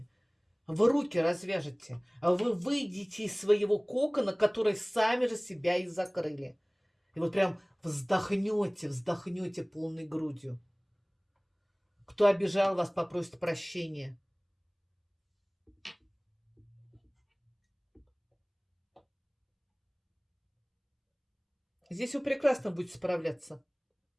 Вы руки развяжете, а вы выйдете из своего кокона, который сами же себя и закрыли. И вот прям вздохнете полной грудью. Кто обижал вас, попросит прощения. Здесь вы прекрасно будете справляться.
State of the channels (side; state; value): both; identical; correlation 1.00